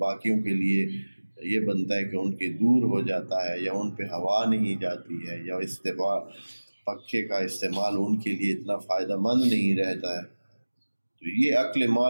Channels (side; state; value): both; inverted; correlation -1.00